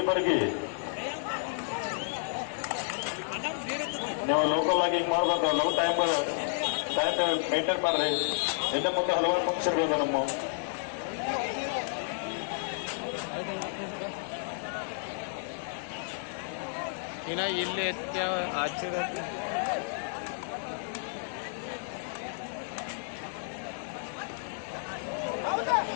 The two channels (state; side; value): silent; right; digital silence